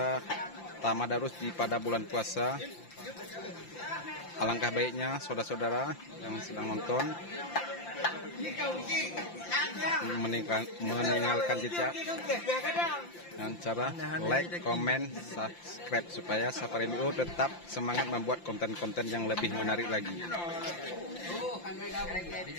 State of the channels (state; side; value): late; right; 5.8 ms